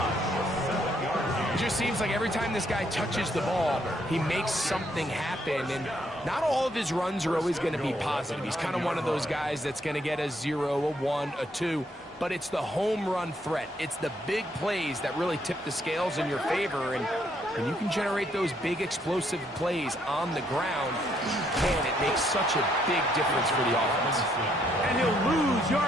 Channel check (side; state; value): both; normal; correlation 0.72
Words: It just seems like every time this guy touches the ball, he makes something happen. And not all of his runs are always going to be positive. He's kind of one of those guys that's going to get a 0, a 1, a 2. But it's the home run threat. It's the big plays that really tip the scales in your favor. And when you can generate those big explosive plays on the ground, man, it makes such a big difference for the offense. And he'll lose